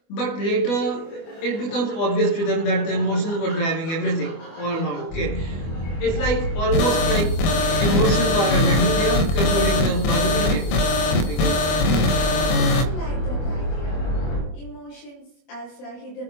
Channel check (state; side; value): late; right; 25 ms